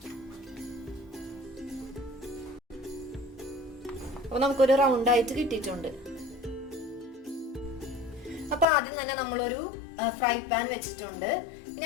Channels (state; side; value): drops out; right; at 8.7 s